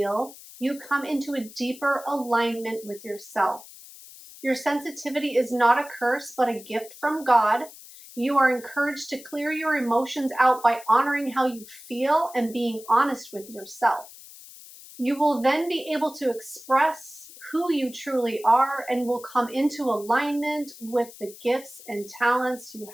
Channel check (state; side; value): noise; left; hiss, 18 dB below the sound